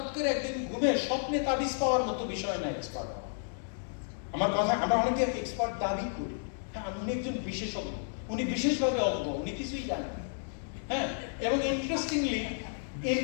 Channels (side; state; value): right; silent; digital silence